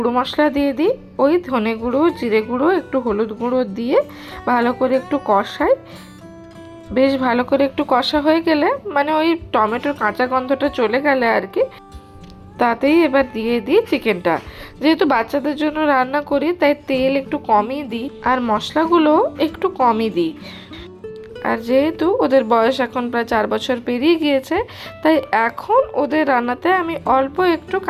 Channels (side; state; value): both; identical; correlation 1.00